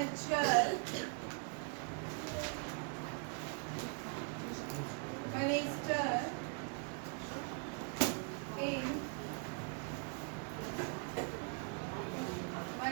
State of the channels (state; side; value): quieter; left; 39.8 dB